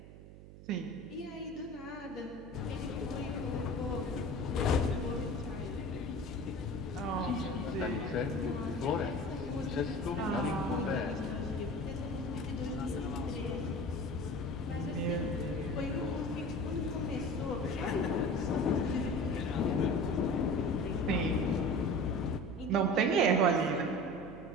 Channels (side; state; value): right; noise; hum, 16 dB below the sound